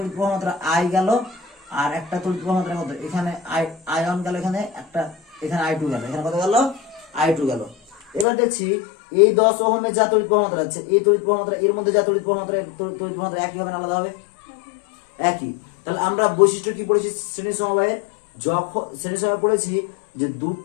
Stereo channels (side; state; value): right; drops out; at 8.2 s